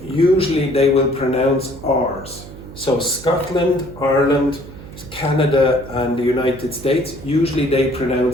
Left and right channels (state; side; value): noise; right; hum, 15 dB below the sound